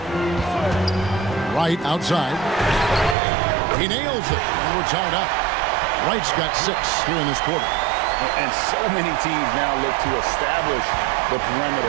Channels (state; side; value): drops out; left; at 3.2 s